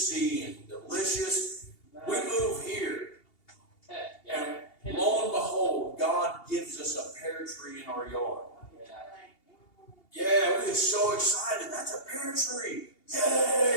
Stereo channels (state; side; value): late; right; 2.8 ms